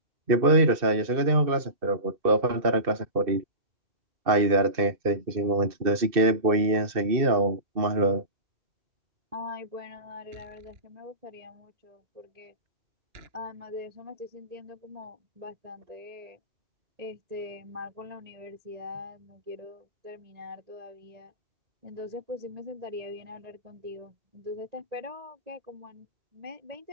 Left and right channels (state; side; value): late; left; 2.6 ms